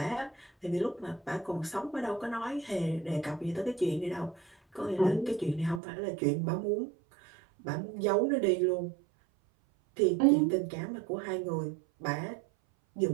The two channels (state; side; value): drops out; left; at 5.8 s